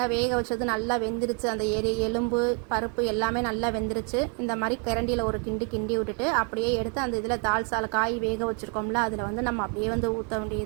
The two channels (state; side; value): quieter; left; 38.5 dB